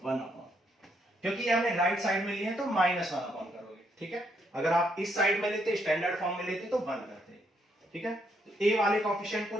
1 अपॉन, क्योंकि ये हमने राइट साइड में लिए हैं तो माइनस 1 अपॉन करोगे, ठीक है, अगर आप इस साइड में लेते, स्टैंडर्ड फॉर्म में लेते तो 1 करते, ठीक है, तो a वाले कोएफिशिएंट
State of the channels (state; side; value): normal; both; correlation 0.74